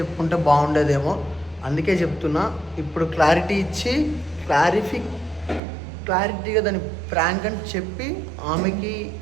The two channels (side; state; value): left; drops out; at 5.6 s